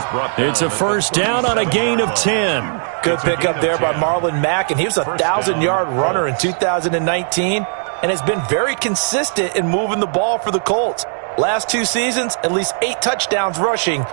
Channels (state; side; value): silent; left; digital silence